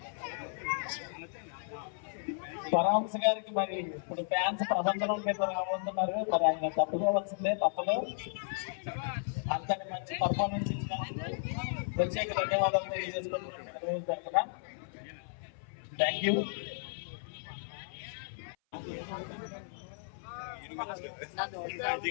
పరమహంస గారికి మరి ఇప్పుడు ఫ్యాన్స్ ప్రబంధనం మీద రాబోతున్నారు. మరి ఆయన తప్పుకోవాల్సిందే, తప్పదు. అంతటి మంచి పర్ఫార్మెన్స్ ఇచ్చిన ప్రత్యేక ధన్యవాదాలు తెలియజేసుకుంటున్నాను. Thank you.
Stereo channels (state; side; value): silent; right; 55 dB below the other